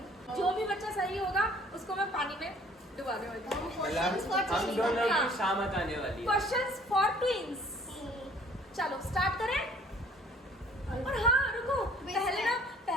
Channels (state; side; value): normal; both; correlation 0.55